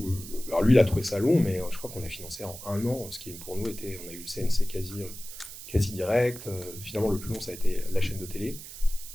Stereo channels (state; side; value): noise; right; hiss, 13 dB below the sound